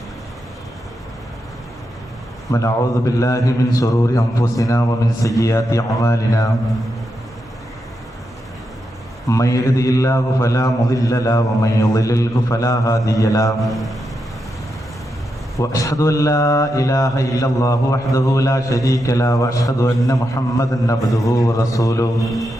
ونعوذ بالله من شرور أنفسنا ومن سيئات أعمالنا من يهده الله فلا مضل له ومن يضلل فلا هادي له وأشهد أن لا إله إلا الله وحده لا شريك له وأشهد أن محمدا عبده ورسوله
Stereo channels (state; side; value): normal; both; correlation 0.85